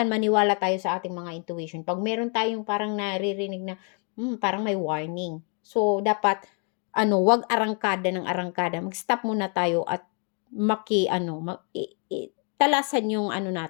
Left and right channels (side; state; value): right; quieter; 38.9 dB